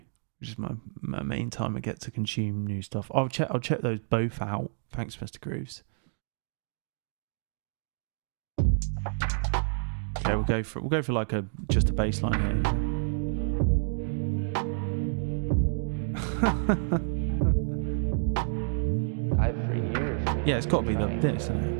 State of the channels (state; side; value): silent; left; digital silence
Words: which is my main time I get to consume new stuff. I'll check those both out. Thanks, Mr. Grooves. Okay, we'll go for like just a bass line here. I've for years. Yeah, it's got to be this, isn't